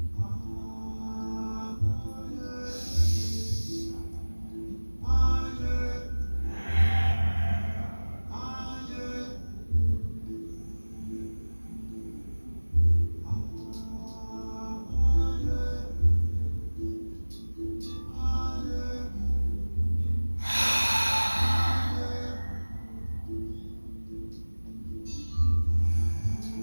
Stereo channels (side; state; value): both; inverted; correlation -1.00